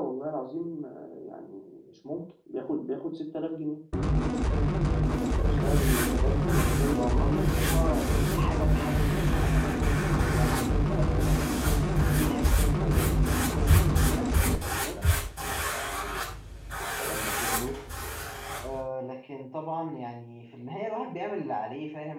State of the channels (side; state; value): both; identical; correlation 1.00